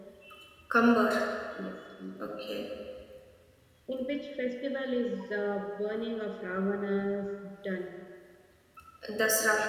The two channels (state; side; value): identical; both; correlation 1.00